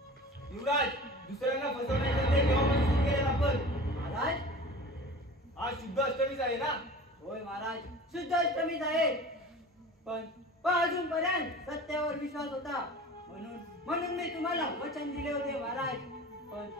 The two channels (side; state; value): both; normal; correlation 0.39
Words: युवराज, दुसऱ्यांना फसवण्याचे ते केव्हापासून सुरू केले आपण? महाराज, आज शुद्ध अष्टमीच आहे ना? होय महाराज, शुद्ध अष्टमीच आहे. पण अजूनपर्यंत सत्यावर विश्वास होता, म्हणून मी तुम्हाला वचन दिले होते महाराज.